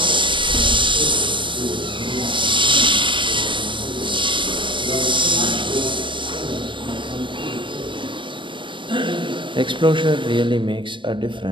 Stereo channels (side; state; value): left; late; 0.24 ms